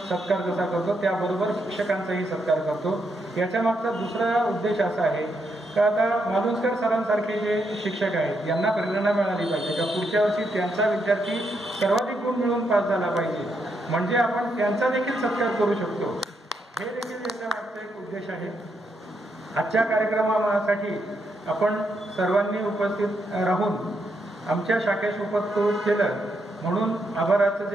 जसा करतो त्याबरोबर शिक्षकांचाही सत्कार करतो. याच्या मागचा दुसरा उद्देश असा आहे का आता मालुसकर सरांसारखे जे शिक्षक आहेत यांना प्रेरणा मिळाली पाहिजे का पुढच्या वर्षी त्यांचा विद्यार्थी सर्वाधिक गुण मिळवून पास झाला पाहिजे, म्हणजे आपण त्यांचा देखील सत्कार करू शकतो. हे देखील याच्या मागचा एक उद्देश आहे. आजच्या कार्यक्रमासाठी आपण सर्वांनी उपस्थित राहून आमच्या शाखेस उपस्थित केलं म्हणून आभाराचं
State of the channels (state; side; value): normal; both; correlation 0.79